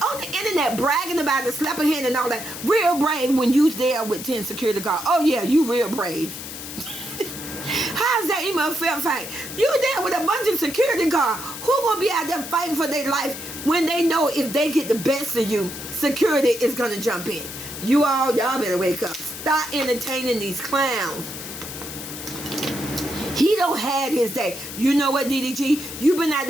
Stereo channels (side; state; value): left; noise; hiss, 10 dB below the sound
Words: on the internet bragging about the slapping hand and all that. Real brave when you there with 10 security guards. Oh yeah, you real brave. How's that even a fair fight? You there with a bunch of security guards. Who gonna be out there fighting for their life when they know if they get the best of you, security is gonna jump in? Y'all better wake up. stop entertaining these clowns. He don't had his day. You know what, DDG? You've been out